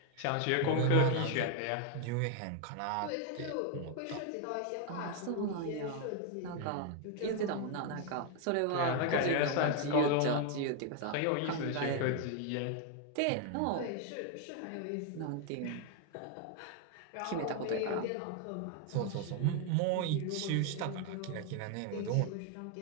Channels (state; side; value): different; both; correlation 0.01